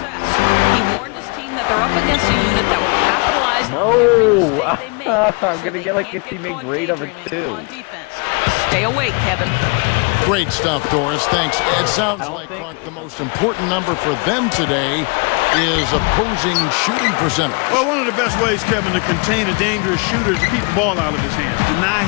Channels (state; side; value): quieter; right; 32.4 dB